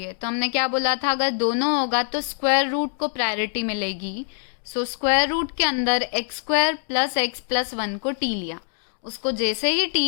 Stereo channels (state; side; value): silent; right; 58 dB below the other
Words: है। तो हमने क्या बोला था, अगर दोनों होगा तो स्क्वायर रूट को प्रायोरिटी मिलेगी। सो स्क्वायर रूट के अंदर x² + x+1 को t लिया, उसको जैसे ही